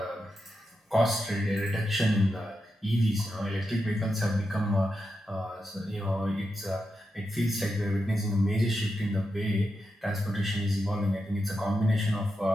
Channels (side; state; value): both; normal; correlation 0.87